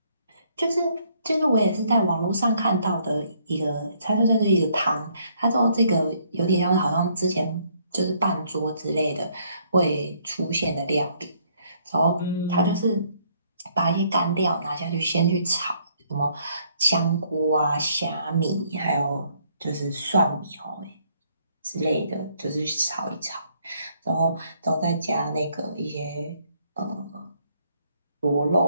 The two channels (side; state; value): both; inverted; correlation -0.68